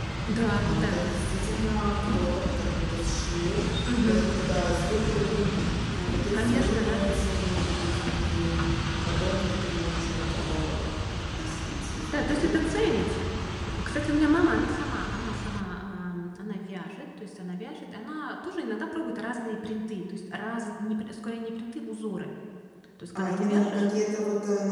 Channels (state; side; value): identical; both; correlation 1.00